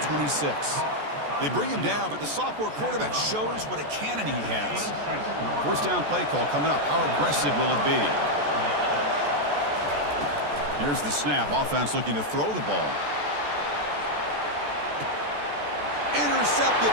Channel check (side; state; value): left; late; 14 ms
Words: They bring him down, but the sophomore quarterback shows what a cannon he has. First down play call coming up. How aggressive will it be? Here's the snap. Offense looking to throw the ball. Intercepted,